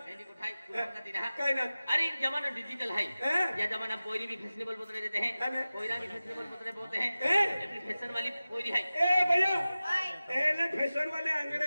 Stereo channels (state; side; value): inverted; both; correlation -0.96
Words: को ठाई का दिन है काय ना अरे जमाना डिजिटल है हैं? या जमाना कोई भी फैशनेबल बोतले देते हैं अरे? कोयरा भी फैशनेबल बोतले बोलते हैं हैं? ये फैशन वाली कोई है ए भैया ओय एले फैशन वाले